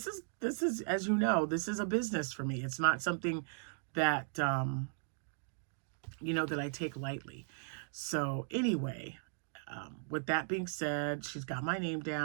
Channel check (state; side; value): silent; left; digital silence